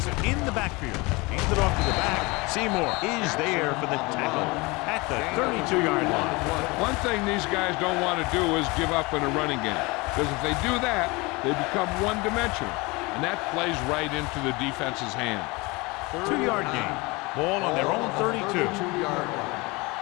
in the backfield. Hands it off to the back. Seymour is there for the tackle at the 32-yard line. One thing these guys don't want to do is give up in a running game, because if they do that, they become one-dimensional, and that plays right into the defense's hand. 2-yard gain. Ball on their own 32.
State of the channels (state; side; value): quieter; right; 25.0 dB